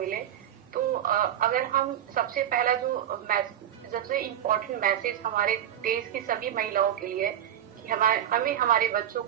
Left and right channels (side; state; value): left; quieter; 10.7 dB